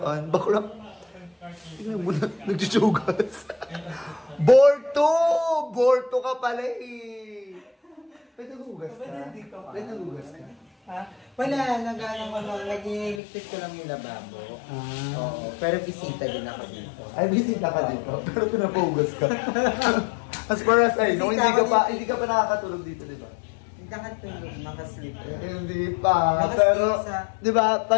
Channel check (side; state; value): right; drops out; at 13.2 s